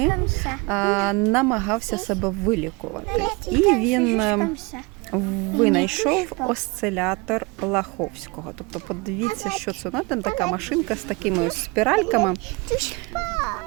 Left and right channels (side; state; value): left; quieter; 26.4 dB